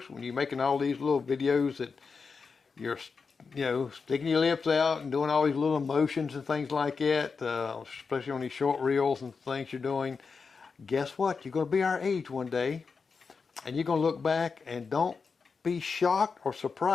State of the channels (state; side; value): quieter; right; 5.1 dB